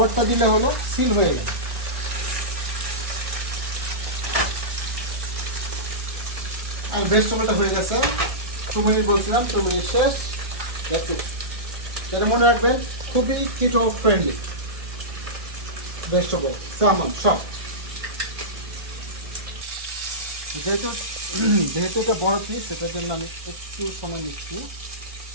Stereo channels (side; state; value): left; late; 1.6 ms